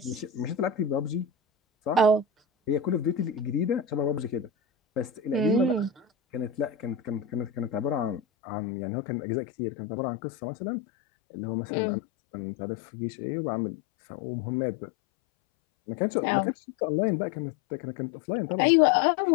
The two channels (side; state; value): right; drops out; at 8.2 s